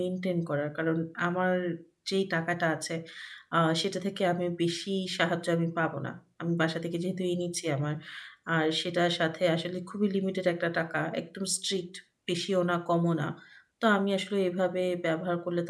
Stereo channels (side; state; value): both; identical; correlation 1.00